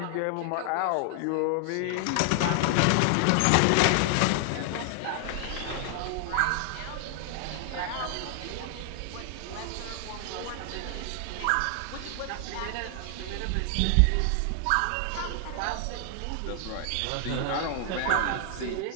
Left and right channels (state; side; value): different; both; correlation 0.00